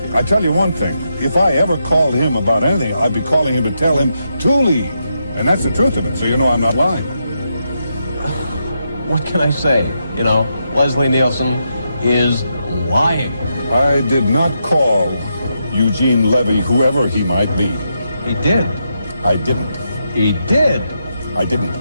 I tell you one thing. If I ever called him about anything, I'd be calling him to tell him to leave. And that's the truth of it, so you know I'm not lying. What can I say? You know, Leslie Nielsen is lying. I did not call Eugene Levy, whoever he might be. He did. I didn't. He did. I didn't.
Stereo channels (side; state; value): both; inverted; correlation -0.83